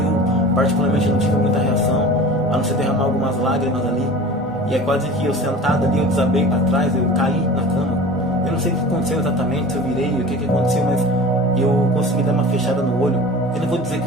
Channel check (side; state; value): both; normal; correlation 0.39